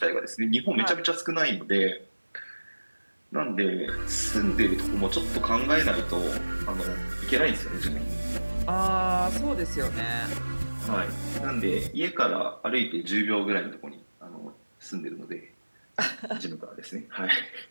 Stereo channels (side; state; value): both; inverted; correlation -1.00